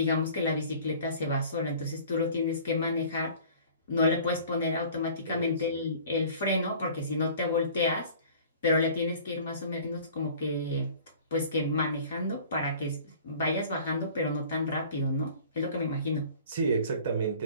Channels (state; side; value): inverted; both; correlation -0.47